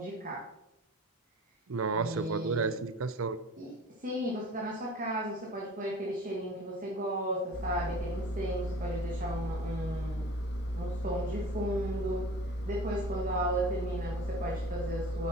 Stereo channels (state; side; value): normal; both; correlation 0.41